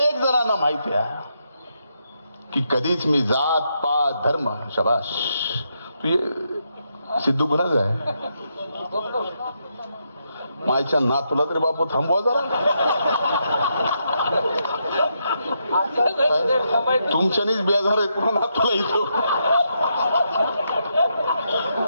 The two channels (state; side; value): inverted; both; correlation -0.80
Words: जणांना माहिती आहे की कधीच मी जात पात धर्म शबाश तू सिद्धू कुणाच आहे मायच्या ना तुला तरी बापू थांबवा जरा. तुमच्यानीच बेजार आहे तुला ना तुला इथं